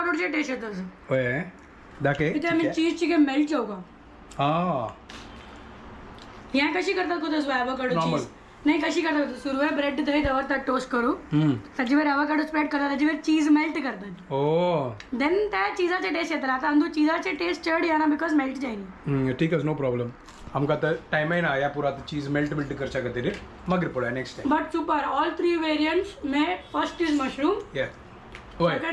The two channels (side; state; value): both; identical; correlation 1.00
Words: टेस्ट येतं असं होय दाखे इथे आम्ही चीजची काय मेल्ट जाऊ का हा ह्या कशी करतात को तसं ॲवोकाडो Normal. चीज नाही कशी करतात सुरुवात ब्रेड थंय दवरतात टोस्ट करू ताजेवर ॲवोकाडो स्प्रेड करतात ताजेवर चीज मेल्ट करतात ओ देन त्या चीजाचे टेस्ट येतात आता आमचो चीजाचे टेस्ट चड येना बिकॉज मेल्ट जायनी ठीक आहे नो प्रॉब्लेम आमकां आतां टायमाय ना या पुरा चीज मेल्ट करच्या खातीर मागीर पळया next time but super all 3 variants में फर्स्ट इज मशरूम या होय